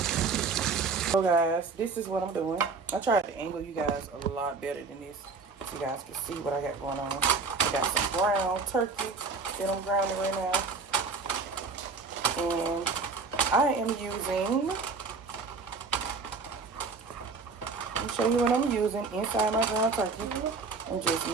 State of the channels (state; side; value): quieter; left; 4.4 dB